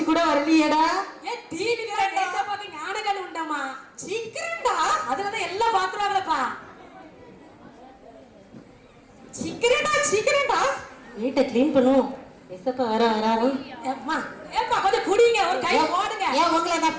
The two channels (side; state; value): both; identical; correlation 1.00